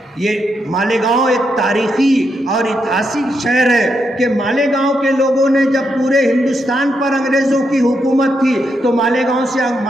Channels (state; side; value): normal; both; correlation 0.81